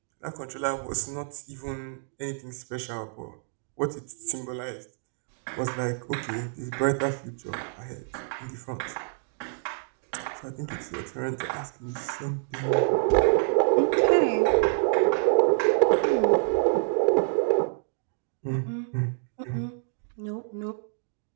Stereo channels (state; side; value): silent; left; digital silence